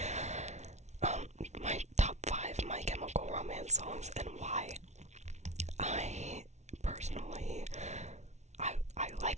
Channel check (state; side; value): late; left; 0.32 ms